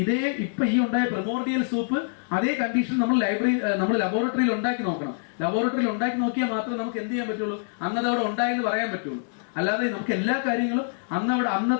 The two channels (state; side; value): silent; right; 61 dB below the other